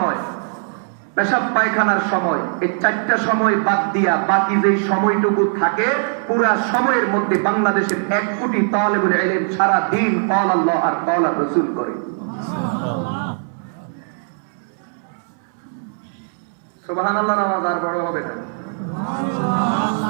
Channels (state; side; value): silent; left; 66 dB below the other